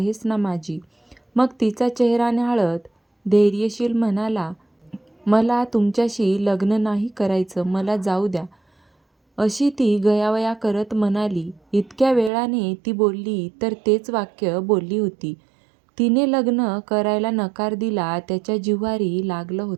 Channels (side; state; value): left; drops out; at 12.3 s